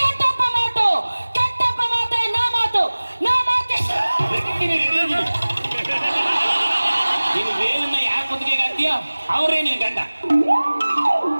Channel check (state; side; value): inverted; both; correlation -1.00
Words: ಕೆಟ್ಟಪ್ಪ ಮಾತು, ಕೆಟ್ಟಪ್ಪ ಮಾತೆ ನಾ ಮಾತು, ನಾ ಮಾತೆ. ನೀನು ವೇಲನ್ನ ಯಾರ ಕುತ್ತಿಗೆಗೆ ಹಾಕ್ತೀಯೋ ಅವರೇ ನಿನ್ ಗಂಡ.